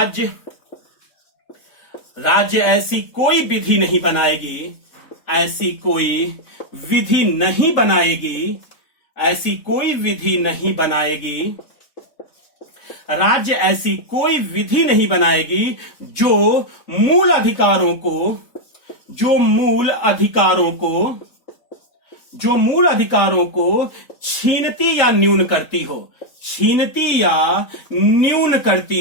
राज्य ऐसी कोई विधि नहीं बनाएगी, ऐसी कोई विधि नहीं बनाएगी, ऐसी कोई विधि नहीं बनाएगी, राज्य ऐसी कोई विधि नहीं बनाएगी जो मूल अधिकारों को छीनती या न्यून करती हो, छीनती या न्यून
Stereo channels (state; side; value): late; right; 3.6 ms